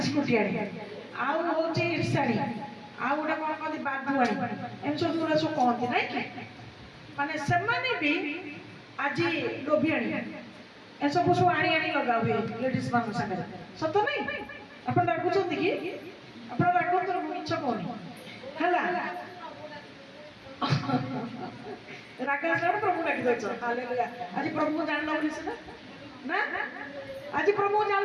आउ हूँ ईर्षाणी आउ गोटे कौन कहते बाधुआणी एम सब गुड़ा सब कहती ना माने से भी आज लोभियाणी ए सब सब आनी आनी लगा हुए लेडीज मान सागर सत नहीं आप रागुंट कि आप रागत मिछ कहनी है रागा प्रभु डाक दे हालेलुया आज प्रभु को जान बोली ना आज प्रभु को जान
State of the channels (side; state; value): both; identical; correlation 1.00